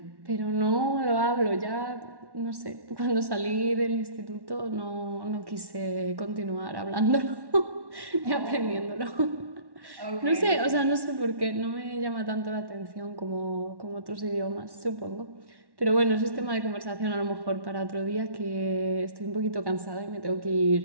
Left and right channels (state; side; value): late; left; 1.1 ms